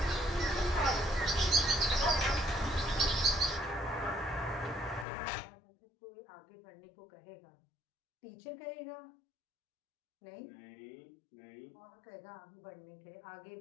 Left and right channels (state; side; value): drops out; right; at 5.1 s